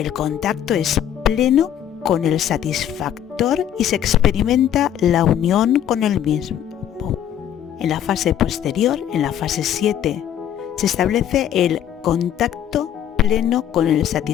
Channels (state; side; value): quieter; right; 10.2 dB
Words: contacto es pleno con el satisfactor y se experimenta la unión con el mismo. En la fase posterior, en la fase 7, se establece el contacto pleno con el